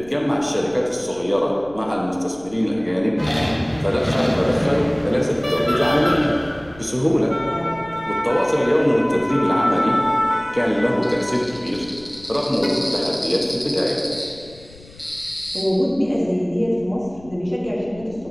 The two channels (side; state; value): left; noise; rumble, 22 dB below the sound